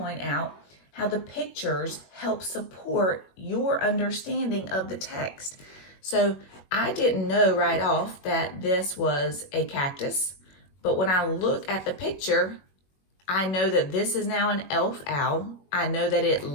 out how the pictures help support your understanding of the text. So I didn't know right off that this was a cactus, but when I look at the picture, I know that this is now an elf owl. I know that it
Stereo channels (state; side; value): late; right; 21 ms